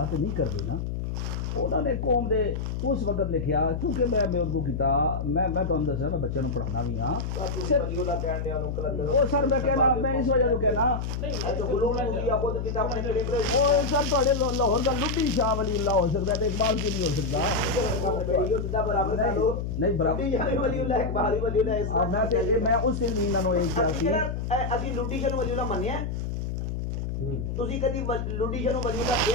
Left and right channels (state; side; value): noise; left; hum, 3 dB below the sound